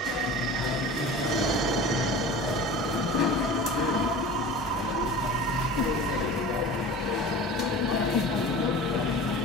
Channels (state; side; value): normal; both; correlation 0.36